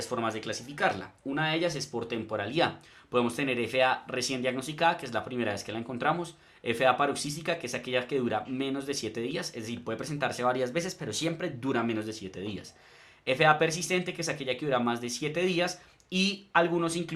formas de clasificarla. Una de ellas es por temporalidad. Podemos tener FA recién diagnosticada, que es la primera vez que la encontramos. FA paroxística, que es aquella que dura menos de 7 días. Es decir, puede presentarse varias veces, pero siempre dura menos de 7 días. FA persistente, que es aquella que dura más de 7 días, y algunos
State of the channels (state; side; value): identical; both; correlation 1.00